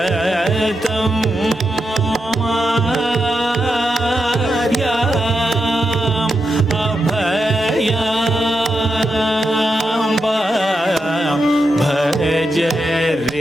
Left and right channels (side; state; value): both; normal; correlation 0.86